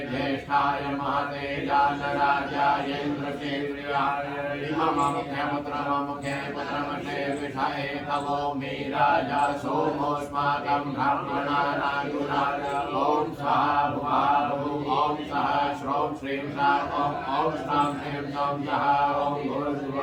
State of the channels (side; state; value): both; identical; correlation 1.00